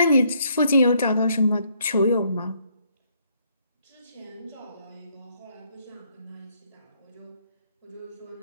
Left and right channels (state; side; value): inverted; both; correlation -0.69